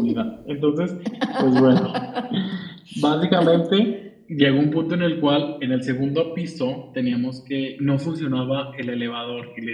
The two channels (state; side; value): identical; both; correlation 1.00